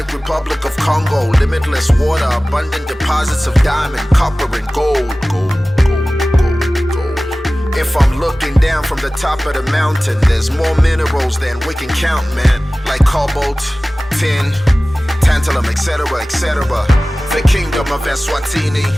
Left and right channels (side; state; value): both; normal; correlation 0.97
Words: Republic of Congo. Limitless water, abundant deposits of diamond, copper, and gold. If I'm looking down from the top of the mountain, there's more minerals than we can count, man. Like cobalt, tin, tantalum, etc., etc. The kingdom of Eswatini